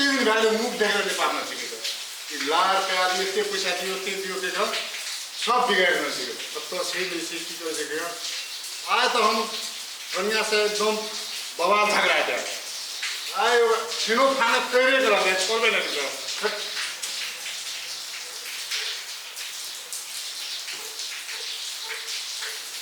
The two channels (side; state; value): both; identical; correlation 1.00